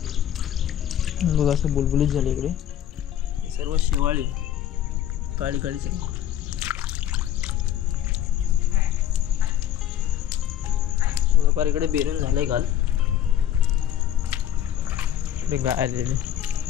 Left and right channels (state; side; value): quieter; right; 10.8 dB